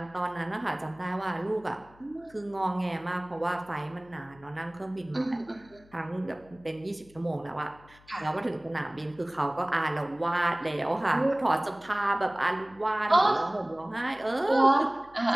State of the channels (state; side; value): noise; left; hum, 26 dB below the sound